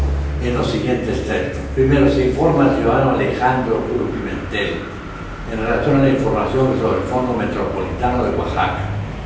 en los siguientes términos. Primero, se informa al ciudadano Alejandro Cruz Pimentel en relación a la información sobre el Fondo Metropolitano de Oaxaca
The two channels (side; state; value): both; identical; correlation 1.00